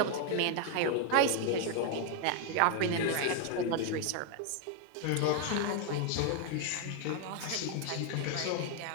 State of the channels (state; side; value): different; both; correlation 0.01